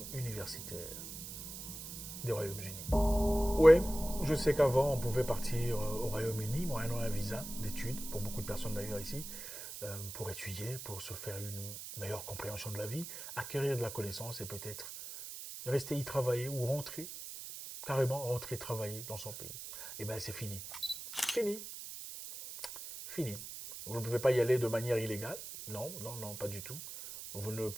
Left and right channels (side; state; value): right; noise; hiss, 9 dB below the sound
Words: universitaire des Royaumes-Unis. Oui, je sais qu'avant, on pouvait partir au Royaume-Uni, moyennant un visa d'études, pour beaucoup de personnes d'ailleurs ici, pour étudier, pour se faire une meilleure compréhension de la vie, acquérir de la connaissance et peut-être rester y travailler ou rentrer, carrément rentrer travailler dans son pays. Eh bien, c'est fini. Fini. Fini. Vous ne pouvez pas y aller de manière illégale. Non, non, non, pas du tout. Vous ne